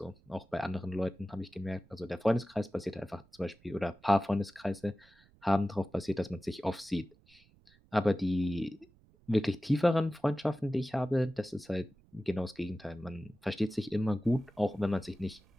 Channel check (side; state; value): right; noise; rumble, 29 dB below the sound